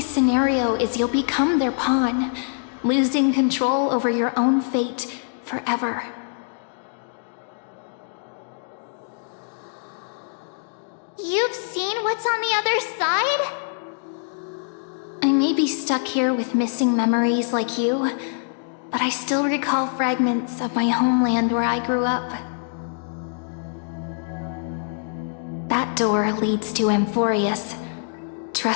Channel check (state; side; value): silent; right; digital silence